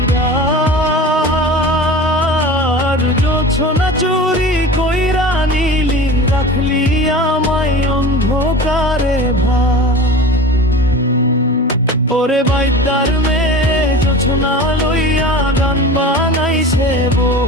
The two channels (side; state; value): both; normal; correlation 0.35